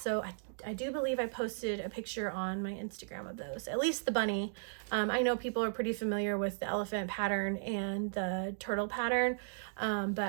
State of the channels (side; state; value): left; silent; digital silence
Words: I do believe I posted a picture on my Instagram of those, at least the bunny. I know people are pretty familiar with the elephant pattern and the turtle pattern,